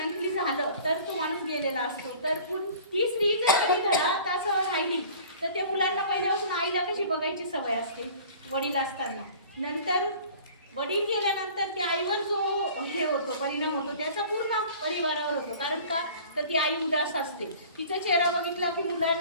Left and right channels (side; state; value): both; inverted; correlation -0.46